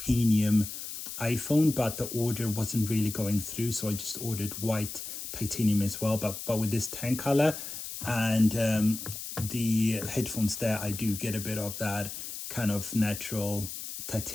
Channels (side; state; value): left; noise; hiss, 8 dB below the sound